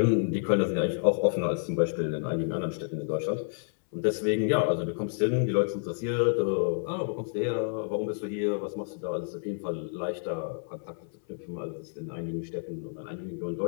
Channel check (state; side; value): silent; right; 58 dB below the other